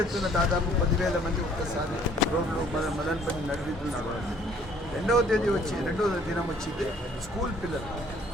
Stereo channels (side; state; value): both; normal; correlation 0.59